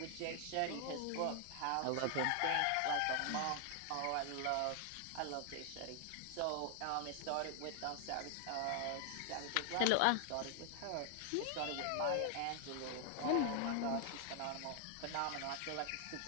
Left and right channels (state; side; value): different; both; correlation 0.00